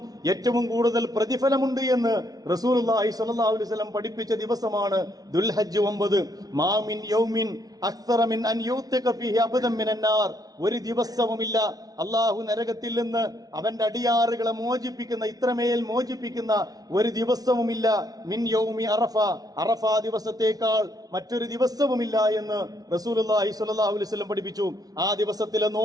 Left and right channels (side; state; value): left; late; 0.18 ms